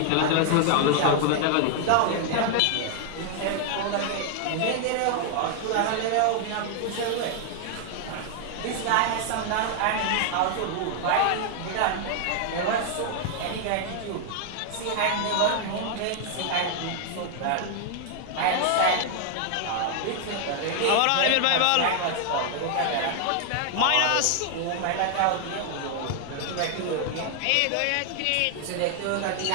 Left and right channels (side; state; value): both; different; correlation 0.00